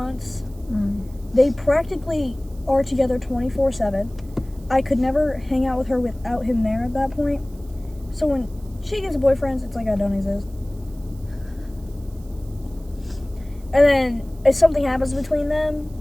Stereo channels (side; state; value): right; noise; hiss, 28 dB below the sound